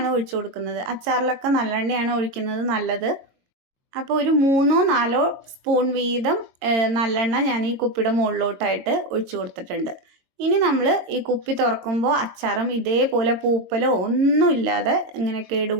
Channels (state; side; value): late; left; 22 ms